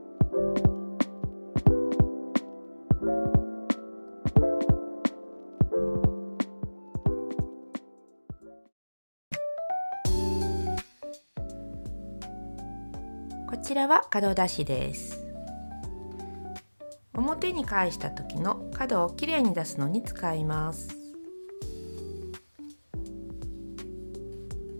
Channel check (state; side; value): inverted; both; correlation -1.00